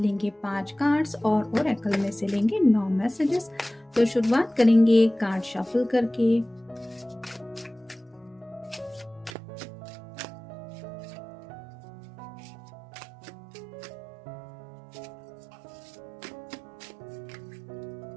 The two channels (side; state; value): left; drops out; at 9.3 s